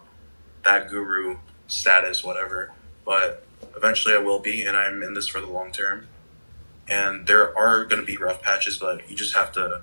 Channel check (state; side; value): inverted; both; correlation -1.00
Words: that guru status, whatever. But eventually, I will be, and I'm in this for the long term. And there are going to be rough patches, but you just have to